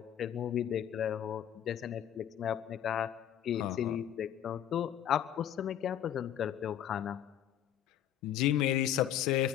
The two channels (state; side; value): quieter; right; 10.4 dB